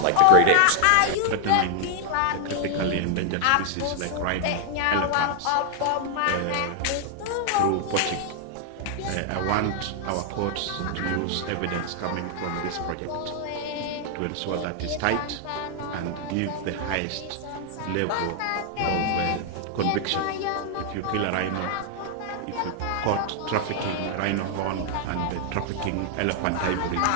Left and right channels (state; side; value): different; both; correlation 0.00